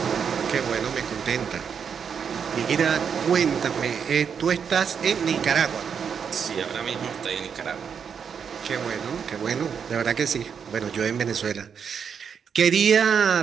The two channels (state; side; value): quieter; left; 7.0 dB